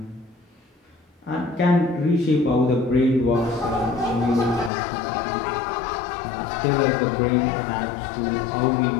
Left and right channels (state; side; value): drops out; right; at 4.7 s